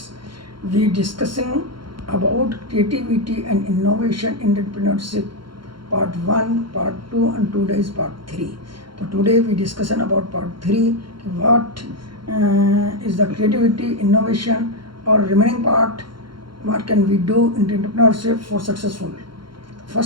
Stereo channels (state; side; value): late; left; 0.73 ms